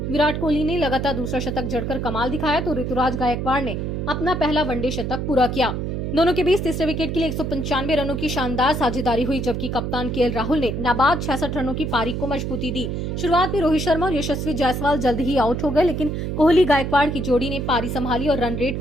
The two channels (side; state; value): right; noise; hum, 3 dB below the sound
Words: विराट कोहली ने लगातार दूसरा शतक जड़कर कमाल दिखाया, तो ऋतुराज गायकवाड़ ने अपना पहला वनडे शतक पूरा किया। दोनों के बीच तीसरे विकेट के लिए 195 रनों की शानदार साझेदारी हुई, जबकि कप्तान केएल राहुल ने नाबाद 66 रनों की पारी को मजबूती दी। शुरुआत में रोहित शर्मा और यशस्वी जायसवाल जल्द ही आउट हो गए, लेकिन कोहली गायकवाड़ की जोड़ी ने पारी संभाली और रन रेट